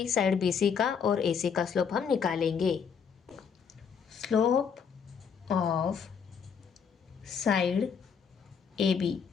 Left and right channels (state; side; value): quieter; right; 6.7 dB